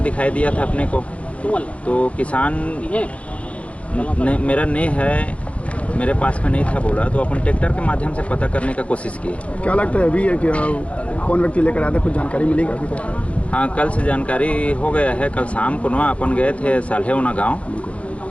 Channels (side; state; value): right; late; 0.063 ms